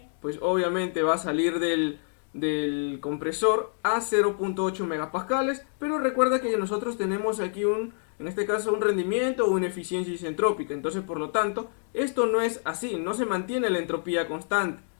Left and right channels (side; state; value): right; silent; 60 dB below the other